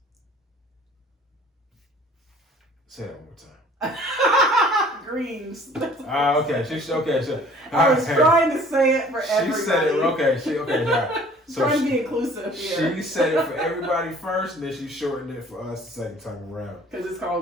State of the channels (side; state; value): both; normal; correlation 0.52